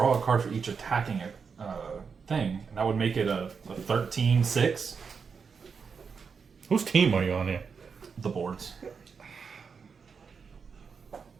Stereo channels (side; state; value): left; quieter; 5.8 dB